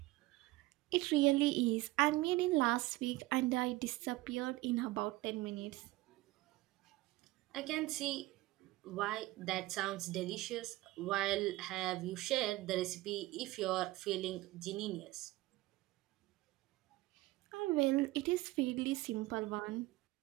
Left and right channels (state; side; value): quieter; left; 19.2 dB